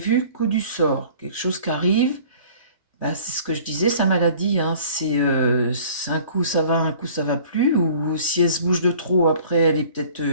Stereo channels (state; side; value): inverted; both; correlation -0.49